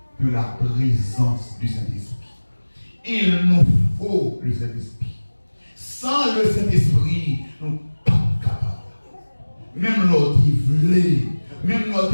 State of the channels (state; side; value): inverted; both; correlation -1.00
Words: de la présence du Saint-Esprit. Il nous faut le Saint-Esprit. Sans le Saint-Esprit, nous ne sommes pas capables. Même l'autre voulait, même l'autre